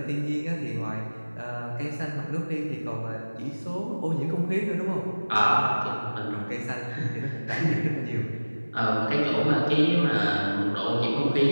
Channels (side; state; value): both; inverted; correlation -1.00